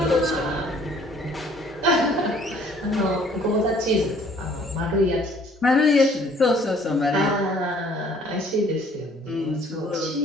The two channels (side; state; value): both; normal; correlation 0.58